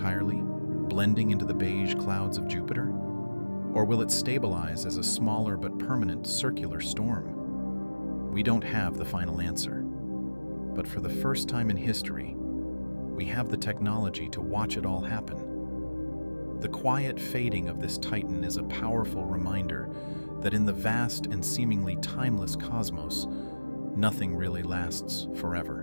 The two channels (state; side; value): inverted; both; correlation -1.00